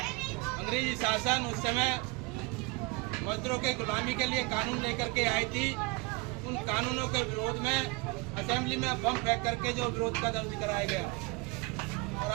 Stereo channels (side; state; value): left; quieter; 26.2 dB